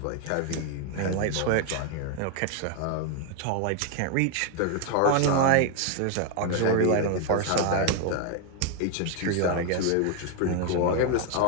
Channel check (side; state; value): both; different; correlation 0.01